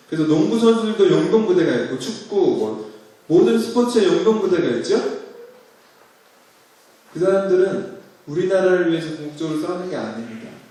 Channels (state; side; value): identical; both; correlation 1.00